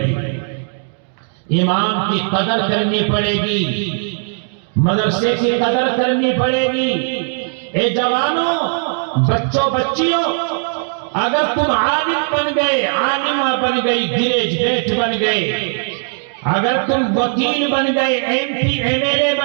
امام کی قدر کرنی پڑے گی، مدرسے کی قدر کرنی پڑے گی۔ اے جوانوں، بچوں، بچیوں، اگر تم عالم بن گئے، عالمہ بن گئی، گریجویٹ بن گئے، اگر تم وکیل بن گئے، M P M L A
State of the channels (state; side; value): silent; left; 68 dB below the other